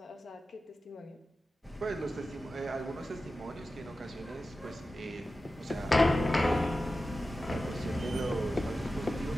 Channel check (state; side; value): normal; both; correlation 0.93